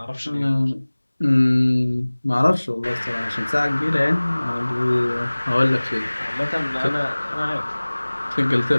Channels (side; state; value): both; inverted; correlation -1.00